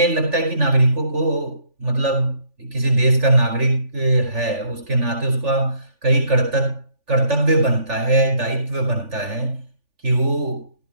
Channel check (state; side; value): late; left; 3.4 ms